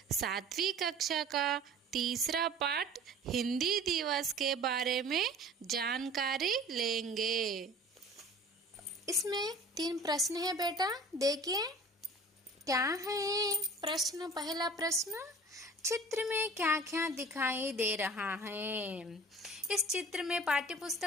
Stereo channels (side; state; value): both; normal; correlation 0.44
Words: 7वीं कक्षा का तीसरा पाठ हिंदी दिवस के बारे में जानकारी लेंगे। इसमें 3 प्रश्न है बेटा, देखिए क्या है प्रश्न। पहला प्रश्न, चित्र में क्या क्या दिखाई दे रहा है। इस चित्र में, पाठ्य